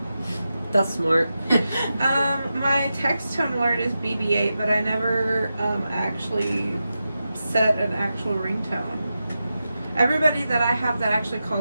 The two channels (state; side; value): inverted; both; correlation -0.91